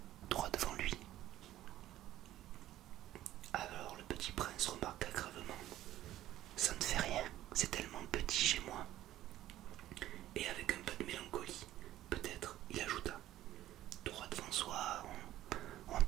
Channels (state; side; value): quieter; left; 13.9 dB